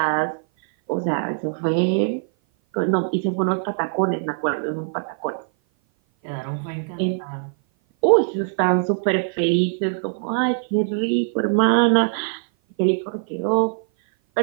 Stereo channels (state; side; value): silent; left; 57 dB below the other